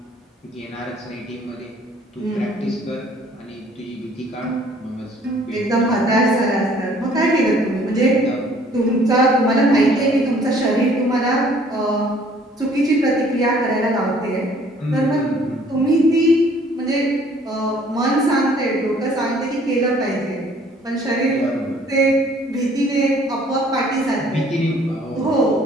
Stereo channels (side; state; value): both; normal; correlation 0.58